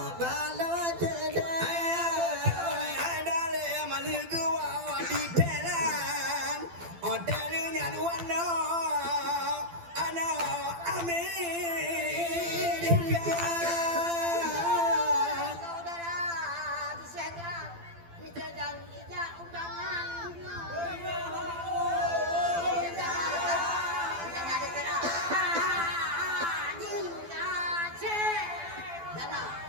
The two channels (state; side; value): late; left; 12 ms